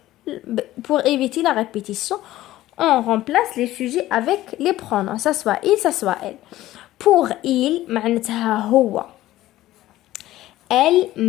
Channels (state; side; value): quieter; right; 15.3 dB